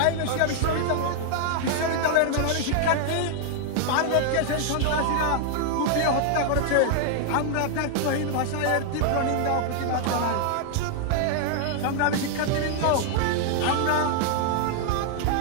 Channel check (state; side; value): different; both; correlation 0.00